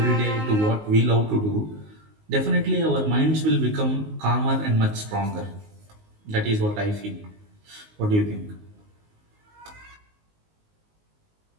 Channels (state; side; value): late; left; 19 ms